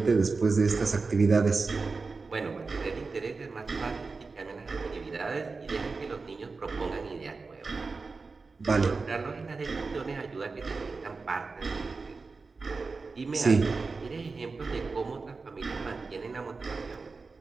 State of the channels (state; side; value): quieter; left; 4.2 dB